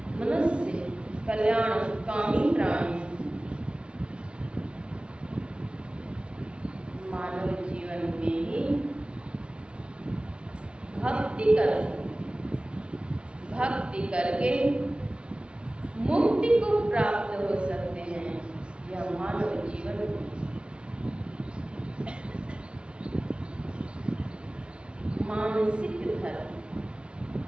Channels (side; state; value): left; late; 0.057 ms